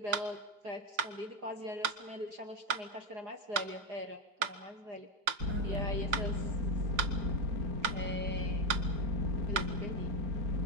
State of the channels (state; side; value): late; left; 5.5 ms